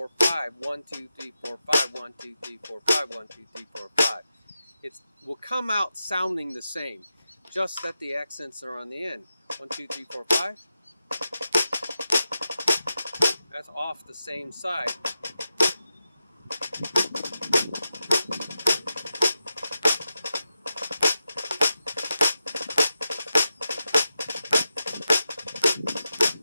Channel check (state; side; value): inverted; both; correlation -0.89